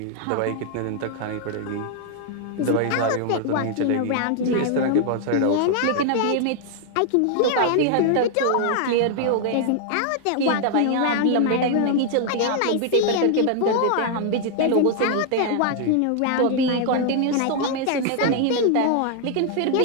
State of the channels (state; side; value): different; both; correlation 0.00